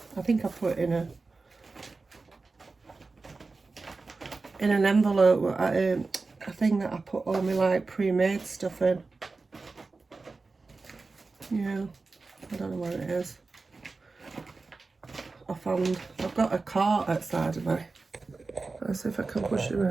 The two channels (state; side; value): quieter; left; 3.9 dB